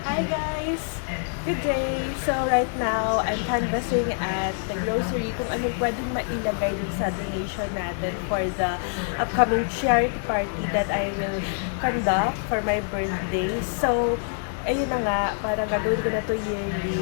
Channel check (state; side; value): silent; right; digital silence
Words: Hi guys! Good day! So right now, I'm canvassing at the grocery kung anong pwedeng mailagay dun sa donation natin for the upcoming charity party that I will conduct for my birthday. So, ayun na nga, parang gagawin ko na to